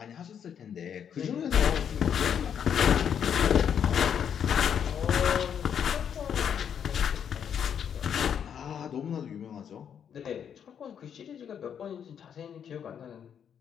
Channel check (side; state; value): right; quieter; 8.2 dB